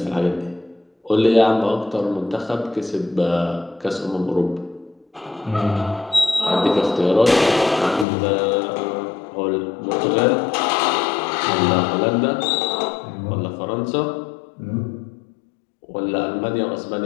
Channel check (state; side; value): drops out; right; at 8.1 s